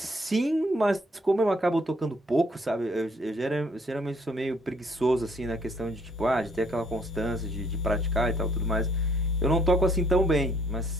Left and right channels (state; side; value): normal; both; correlation 0.64